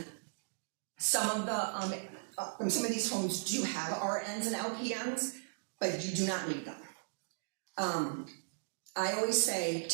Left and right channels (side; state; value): left; silent; digital silence